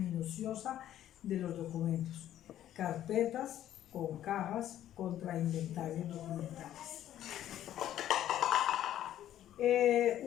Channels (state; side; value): quieter; right; 12.0 dB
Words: de los documentos, carpetas con cajas contra inventarios documentales.